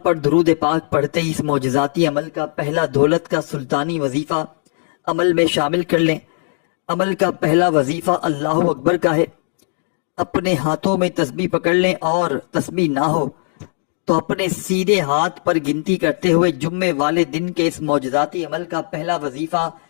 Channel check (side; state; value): right; silent; digital silence